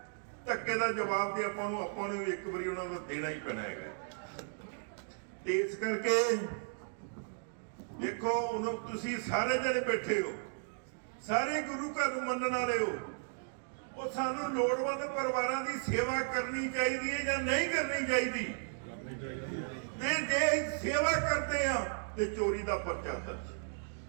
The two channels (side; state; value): left; silent; digital silence